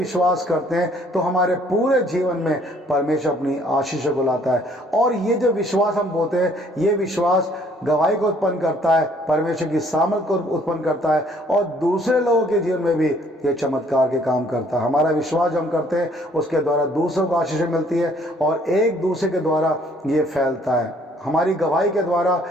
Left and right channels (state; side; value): normal; both; correlation 0.61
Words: करते हैं तो हमारे पूरे जीवन में परमेश्वर अपनी आशीषों को लाता है। और ये जो विश्वास हम बोलते हैं, ये विश्वास गवाही को उत्पन्न करता है, परमेश्वर की सामर्थ को उत्पन्न करता है और दूसरे लोगों के जीवन में भी ये चमत्कार के काम करता है। हमारा विश्वास जो हम करते हैं उसके द्वारा दूसरों को आशीषें मिलती है और एक दूसरे के द्वारा ये फैलता है, हमारी गवाही के द्वारा